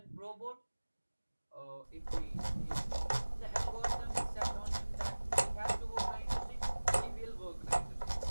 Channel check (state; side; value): inverted; both; correlation -1.00